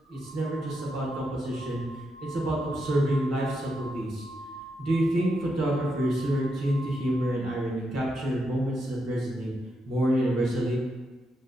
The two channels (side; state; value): both; normal; correlation 0.83